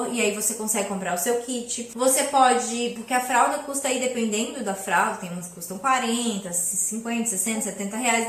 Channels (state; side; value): identical; both; correlation 1.00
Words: e aí você consegue comprar o seu kit. Você pode, porque a fralda custa aí, dependendo da fralda, tem umas que custam 40, 50, 60, 70 reais,